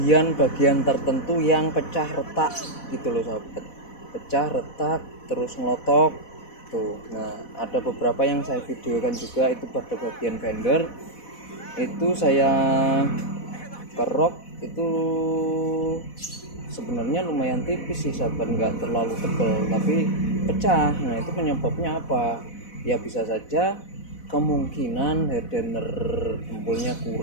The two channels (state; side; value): late; right; 4.1 ms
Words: tertentu yang pecah retak gitu loh sahabat, pecah retak terus ngelotok tuh. Nah, ada beberapa yang saya videokan juga, itu pada bagian fender itu saya kerok, itu sebenarnya lumayan tipis sih sahabat, nggak terlalu tebal tapi pecah. Nah, itu penyebabnya apa? Ya bisa saja kemungkinan hardener jempolnya